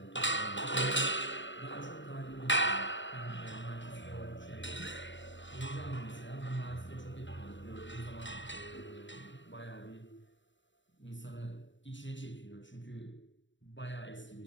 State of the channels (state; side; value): late; right; 0.54 ms